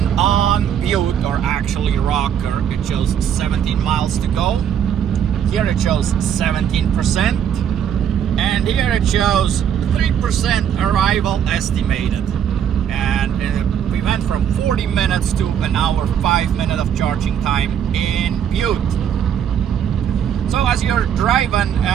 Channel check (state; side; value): quieter; left; 8.8 dB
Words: on Butte, or actually Rocker. It shows 17 miles to go. Here it shows 17%, and here it shows 3% arrival estimated. And we went from 40 minutes to an hour 5 minutes of charging time in Butte. So as you're driving,